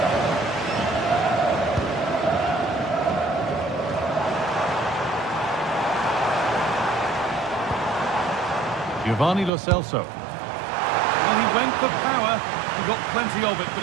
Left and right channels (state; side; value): drops out; left; at 9.5 s